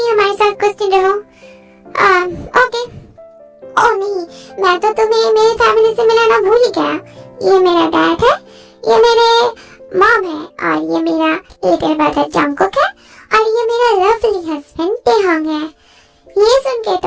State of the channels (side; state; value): both; identical; correlation 1.00